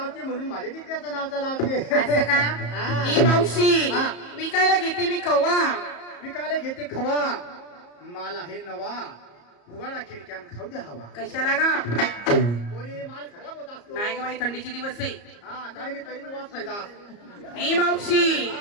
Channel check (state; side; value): late; right; 34 ms